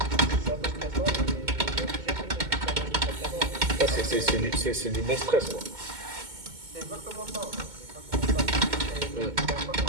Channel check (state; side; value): late; left; 2.2 ms